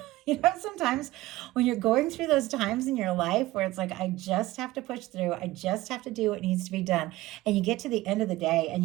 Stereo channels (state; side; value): quieter; left; 17.8 dB